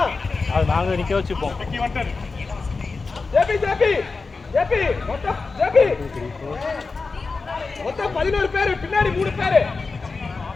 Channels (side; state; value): right; quieter; 4.2 dB